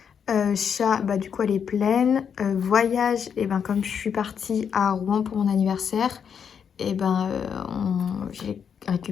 Chat, bah du coup elle est pleine. Voyage, et ben comme je suis partie à Rouen pour mon anniversaire, et ben j'ai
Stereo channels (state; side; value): quieter; right; 7.3 dB